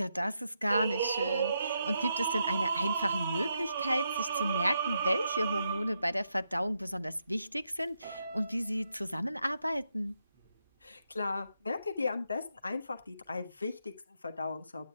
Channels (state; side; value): inverted; both; correlation -0.82